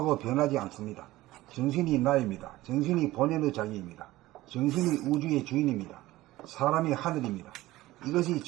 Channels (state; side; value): quieter; left; 17.3 dB